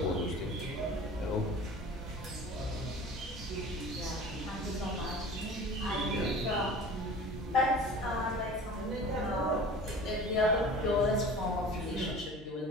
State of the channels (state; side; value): normal; both; correlation 0.41